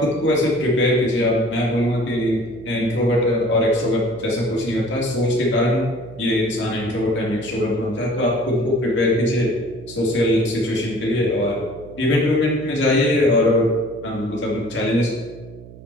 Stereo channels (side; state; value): right; noise; hum, 18 dB below the sound